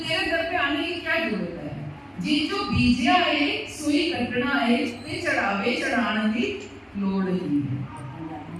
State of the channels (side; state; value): both; identical; correlation 1.00